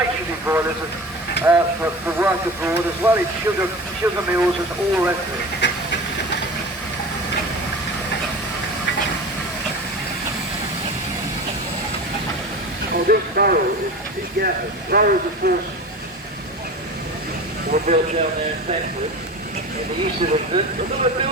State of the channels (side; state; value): both; normal; correlation 0.33